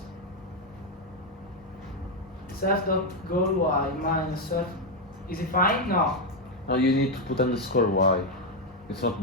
self.goal.y minus self. Is it fine? No. No, you need to put underscore y. It's not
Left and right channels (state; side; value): normal; both; correlation 0.04